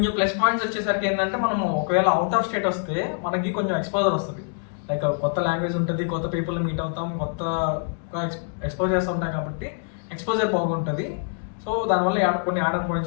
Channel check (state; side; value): silent; right; digital silence